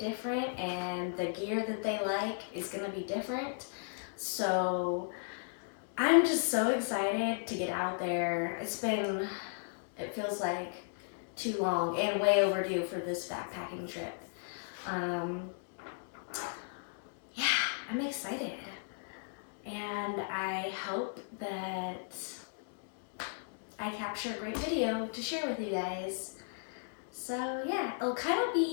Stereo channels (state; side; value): silent; right; digital silence